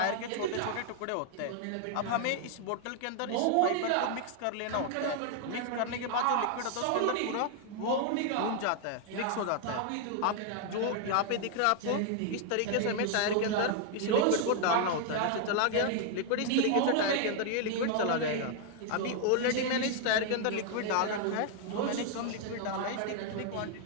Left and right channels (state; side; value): different; both; correlation 0.00